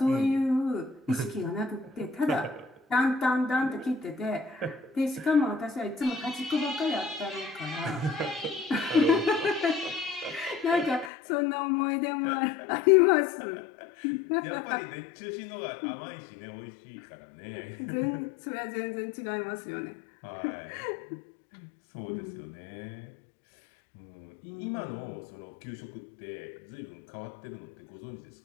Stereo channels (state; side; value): drops out; right; at 11.1 s